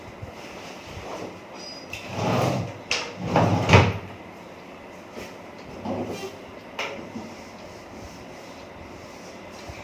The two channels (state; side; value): identical; both; correlation 1.00